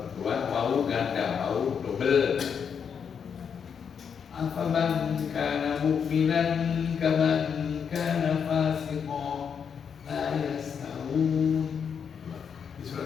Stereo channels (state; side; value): quieter; right; 7.0 dB